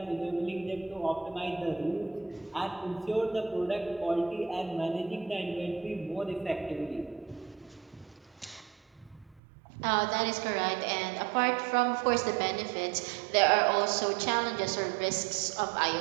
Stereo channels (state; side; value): drops out; left; at 9.4 s